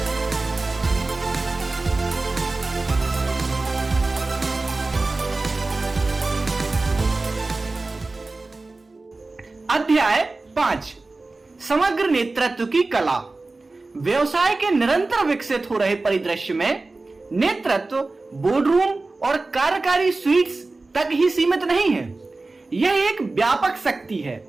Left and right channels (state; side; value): quieter; left; 3.4 dB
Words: अध्याय 5 समग्र नेतृत्व की कला। व्यवसाय के निरंतर विकसित हो रहे परिदृश्य में नेतृत्व बोर्डरूम और कार्यकारी स्वीट्स तक ही सीमित नहीं है। यह एक व्यापक शक्ति है